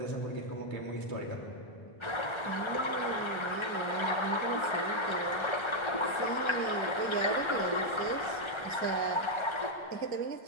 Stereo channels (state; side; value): late; right; 1.3 ms